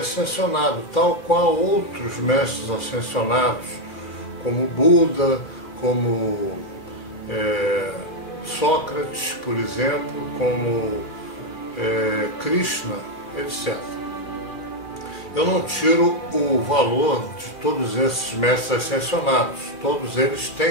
tal qual outros mestres ascensionados, como Buda, como Sócrates, por exemplo, como Krishna, etc. Eu não tiro o valor de todos esses mestres ascensionados. Todos eles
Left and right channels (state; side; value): late; right; 2.4 ms